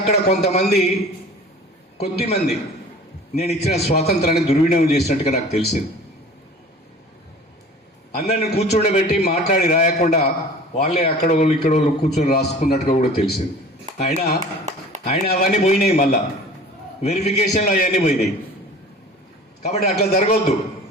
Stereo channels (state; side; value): normal; both; correlation 0.43